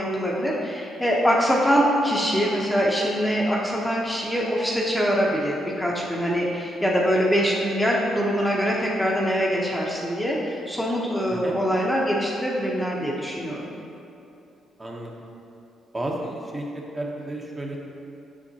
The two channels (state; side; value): normal; both; correlation 0.81